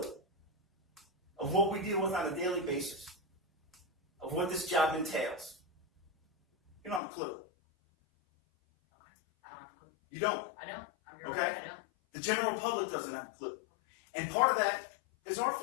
of what we deal with on a daily basis, of what this job entails. You don't have a clue. I don't have a clue. You don't. I don't. I'm your Okay. right. I don't. The general public doesn't have a clue. And part of that is our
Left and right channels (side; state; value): right; drops out; at 7.0 s